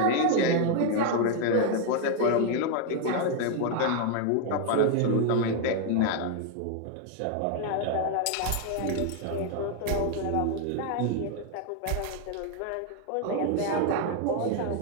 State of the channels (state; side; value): different; both; correlation 0.00